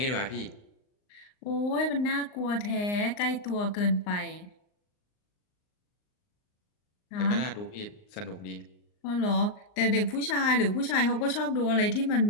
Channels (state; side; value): late; right; 39 ms